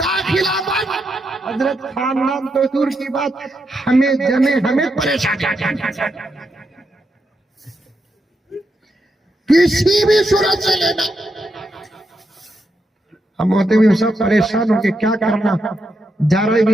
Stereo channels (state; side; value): normal; both; correlation 0.83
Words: बंद। हजरत खानदान तो दूर की बात, हमें परेशान, किसी भी सूरत से लेना। हम होते भी सब परेशान होके क्या करना, जा रहे